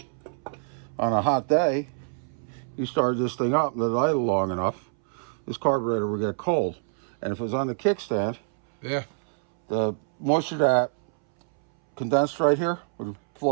hot day, you start this thing up, let it idle long enough, this carburetor will get cold. And if it was on the kickstand, Yeah. the moisture that condensed right here would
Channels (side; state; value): left; silent; 61 dB below the other